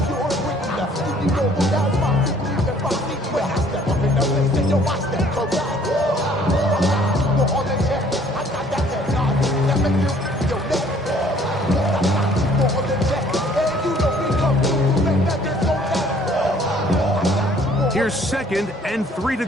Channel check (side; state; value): both; normal; correlation 0.58